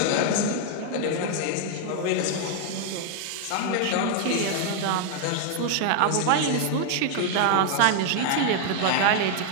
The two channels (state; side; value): different; both; correlation 0.00